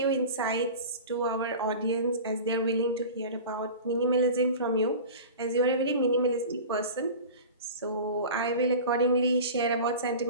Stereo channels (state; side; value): inverted; both; correlation -0.35